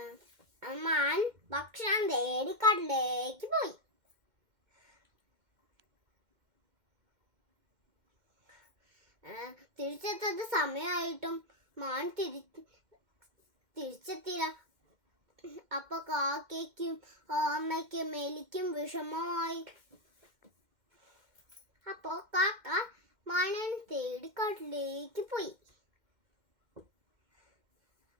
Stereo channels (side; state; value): left; late; 2.1 ms